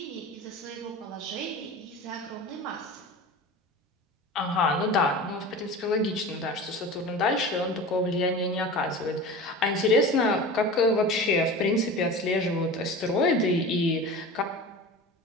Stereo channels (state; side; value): normal; both; correlation 0.34